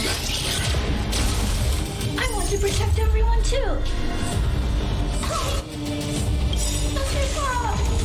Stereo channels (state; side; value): identical; both; correlation 1.00